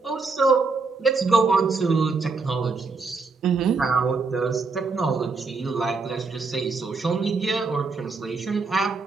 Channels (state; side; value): quieter; left; 4.2 dB